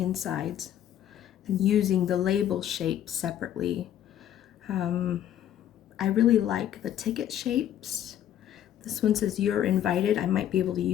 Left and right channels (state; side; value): quieter; right; 11.0 dB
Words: insides and using the label shape separately. I really like the ticket shapes. This one says "You're invited." I might be able to